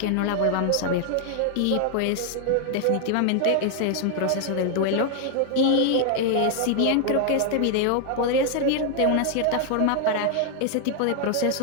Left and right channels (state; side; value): different; both; correlation 0.00